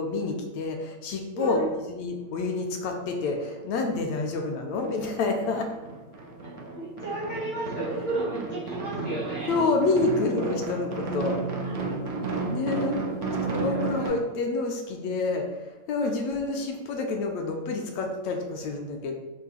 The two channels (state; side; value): late; right; 8.9 ms